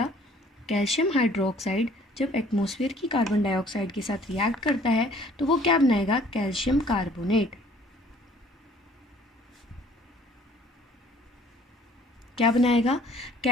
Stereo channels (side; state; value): both; normal; correlation 0.56